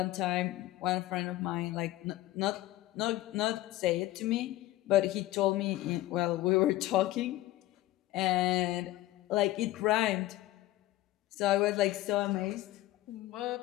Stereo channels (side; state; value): right; quieter; 16.3 dB